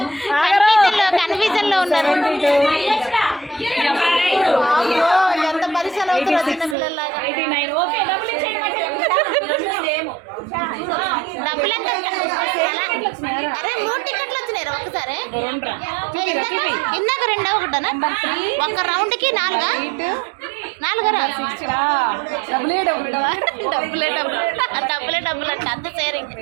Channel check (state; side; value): drops out; left; at 6.8 s